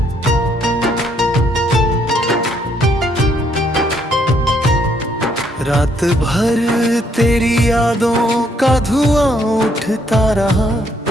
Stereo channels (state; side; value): normal; both; correlation 0.70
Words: रात भर तेरी यादों का धुआं उठता रहा,